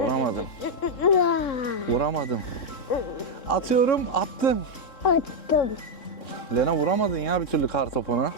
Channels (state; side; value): late; right; 3.7 ms